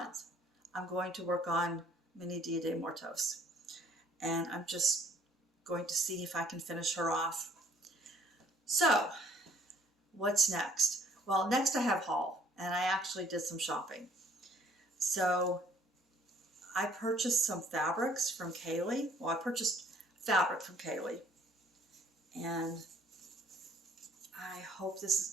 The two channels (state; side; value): normal; both; correlation 0.59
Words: I'm going to work on Mini Dia de Muertos, and I'm just going to see if I can finish her off. So, what's next? Well, next I have haul, and I actually did some shopping. So, I purchased some fabrics from Kaylee. Well, I purchased fabric from Kaylee, and I hope this